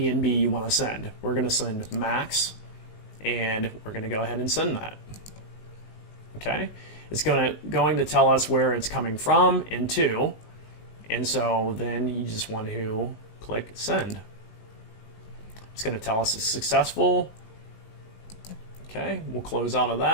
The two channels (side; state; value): right; late; 19 ms